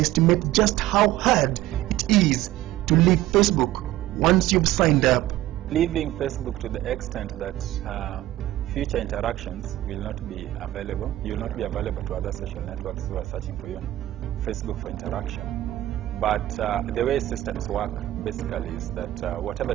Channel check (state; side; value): quieter; left; 15.1 dB